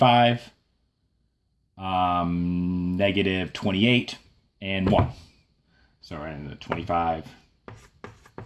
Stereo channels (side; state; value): both; identical; correlation 1.00